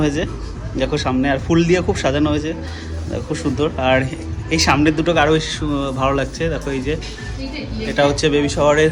হয়েছে। দেখো সামনে আর ফুল দিয়ে খুব সাজানো হয়েছে, খুব সুন্দর। আর এই সামনের দুটোকে আরও বেশি ভালো লাগছে। দেখো এই যে এটা হচ্ছে বেবি শাওয়ারের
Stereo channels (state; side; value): identical; both; correlation 1.00